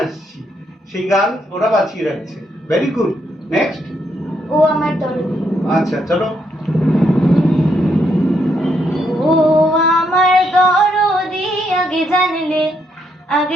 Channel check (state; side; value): normal; both; correlation 0.76